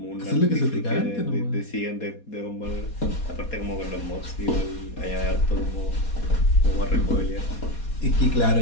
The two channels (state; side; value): late; right; 4.2 ms